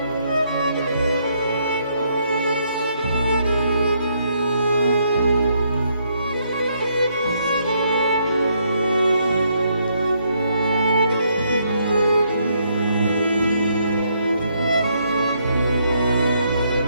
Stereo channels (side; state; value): both; inverted; correlation -0.73